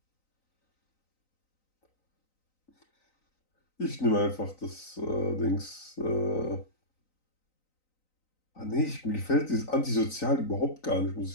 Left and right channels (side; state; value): right; late; 3.9 ms